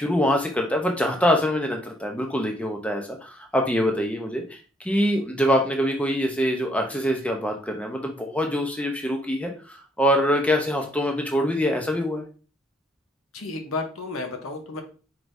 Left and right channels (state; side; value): normal; both; correlation 0.68